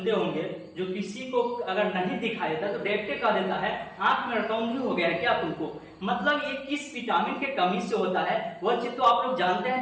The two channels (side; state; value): both; identical; correlation 1.00